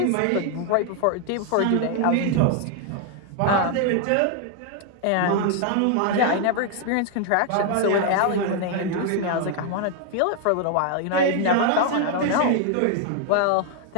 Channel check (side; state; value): both; different; correlation 0.00